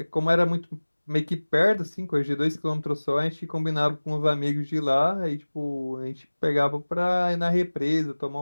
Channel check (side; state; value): both; inverted; correlation -1.00